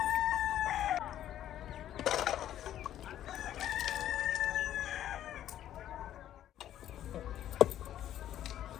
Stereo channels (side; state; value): right; quieter; 11.6 dB